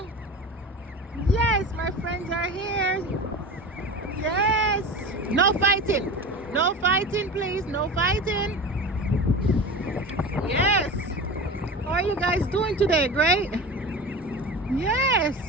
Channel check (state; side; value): normal; both; correlation 0.31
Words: Yes, my friends are here. Yes. No fighting. No fighting, please. No fighting. Yes. How are you guys doing today? Great? Yes.